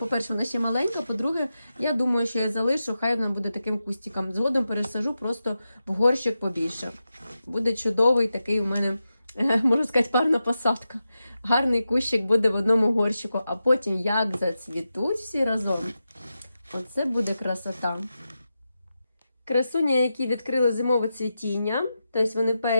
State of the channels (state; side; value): inverted; both; correlation -0.90